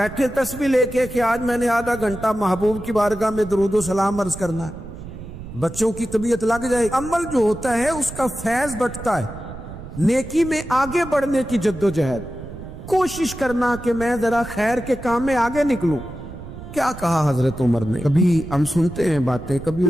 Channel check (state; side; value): noise; right; rumble, 12 dB below the sound